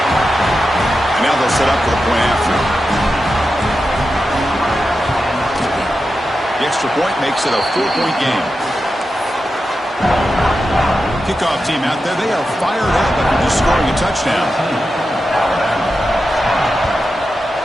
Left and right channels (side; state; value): both; normal; correlation 0.90